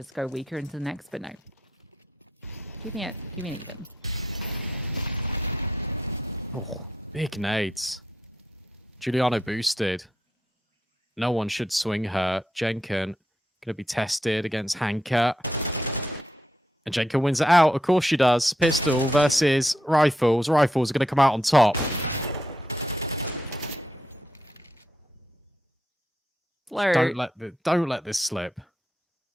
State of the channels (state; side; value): normal; both; correlation 0.81